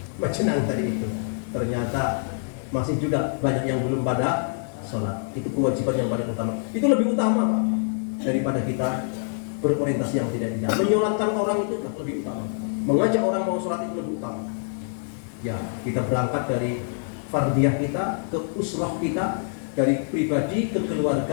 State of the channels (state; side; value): silent; right; digital silence